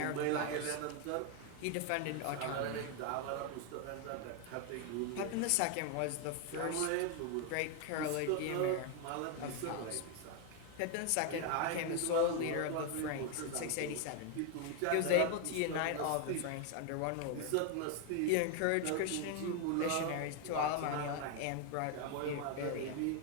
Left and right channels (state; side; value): different; both; correlation 0.01